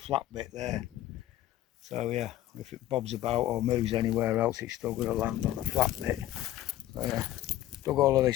bit there. So yeah, if it bobs about or moves anywhere else, it's still going to land on the flat bit. So yeah, dug all of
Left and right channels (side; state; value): right; quieter; 14.0 dB